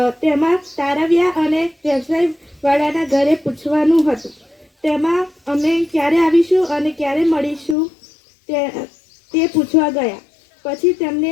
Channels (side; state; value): right; drops out; at 7.8 s